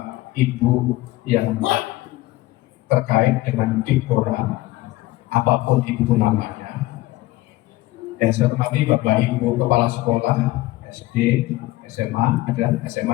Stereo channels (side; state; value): right; quieter; 17.9 dB